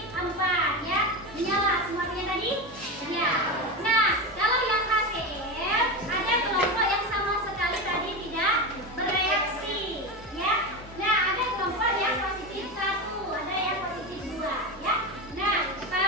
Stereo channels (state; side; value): normal; both; correlation 0.19